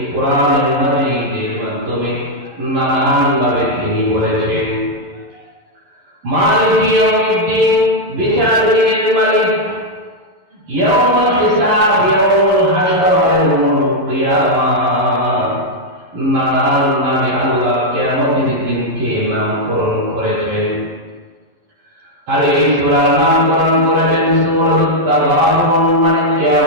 কোরআনের মাজিদের মাধ্যমে নানানভাবে তিনি বলেছেন। মালিক ইয়াউমিদ্দিন, বিচার দিনের মালিক। ইয়াউমুল হিসাব, ইয়াউমুল হাসর, ইয়াউমুল কিয়ামাহ, নানান নামে আল্লাহ কিয়ামতের দিনকে নামকরণ করেছেন। আর এই সূরার নামকরণ করেছেন সূরাতুত তাগাবুন, মানে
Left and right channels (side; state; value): left; late; 11 ms